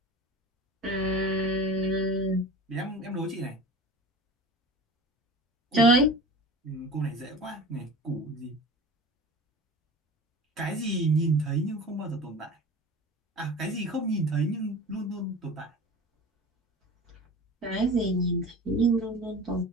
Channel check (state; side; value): normal; both; correlation 0.36